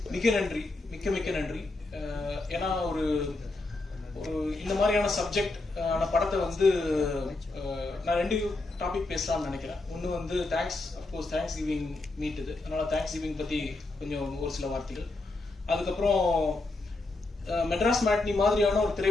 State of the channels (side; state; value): right; quieter; 3.1 dB